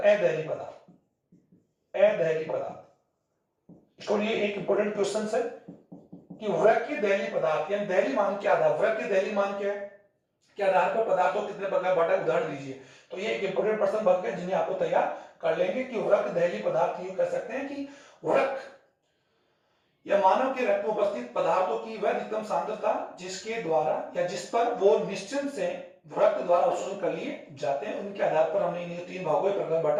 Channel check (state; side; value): identical; both; correlation 1.00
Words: अदहली पदार्थ। अदहली पदार्थ, इसको लिए एक इंपॉर्टेंट क्वेश्चन है कि वृक्क दहली पदार्थ यानी दहली मान क्या आधार, वृक्क दहली मान क्या है, के आधार पर पदार्थों कितने प्रकार बांटा, उदाहरण दीजिए। तो ये एक इंपोर्टेंट प्रश्न बन गए जिन्हें आपको तैयार कर लेंगे कि वृक्क दहली पदार्थ यूं कह सकते हैं कि वृक्क या मानव के रक्त में उपस्थित पदार्थों की वह अधिकतम सांद्रता जिसके द्वारा या जिस पर वो निश्चय से रक्त द्वारा अवशोषण कर लिए जाते हैं, उनके आधार पर हमने इन्हें तीन भागों में प्रकार